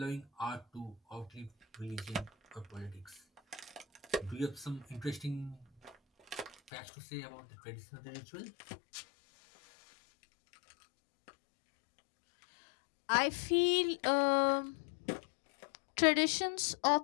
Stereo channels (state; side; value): drops out; right; at 6.7 s